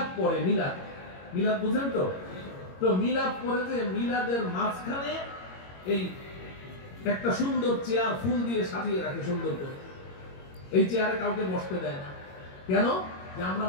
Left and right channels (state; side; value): late; right; 22 ms